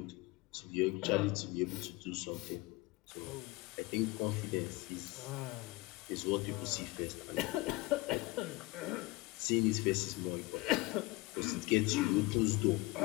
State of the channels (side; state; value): right; quieter; 21.8 dB